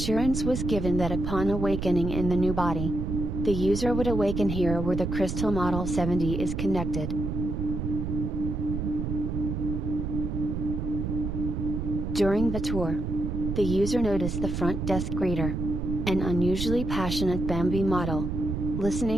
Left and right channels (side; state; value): right; noise; rumble, 3 dB below the sound